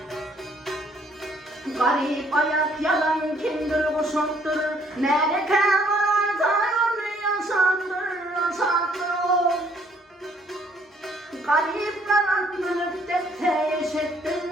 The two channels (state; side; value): normal; both; correlation 0.64